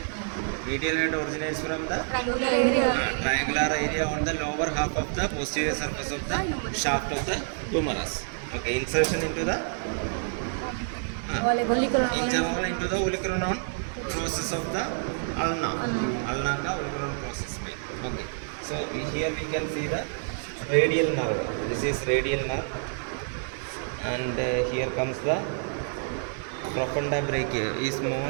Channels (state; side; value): silent; left; digital silence